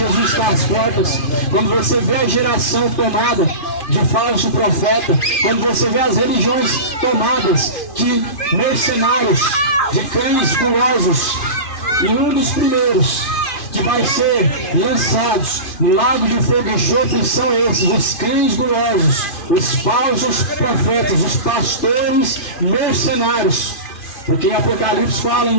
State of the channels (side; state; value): right; late; 2.5 ms